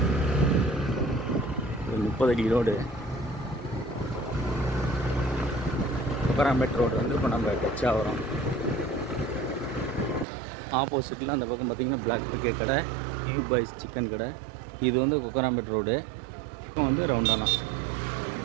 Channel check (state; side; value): drops out; left; at 10.2 s